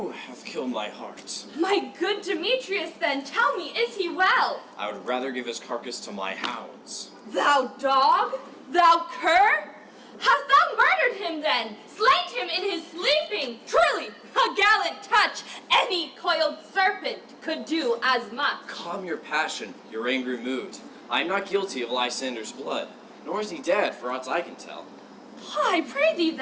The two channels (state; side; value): identical; both; correlation 1.00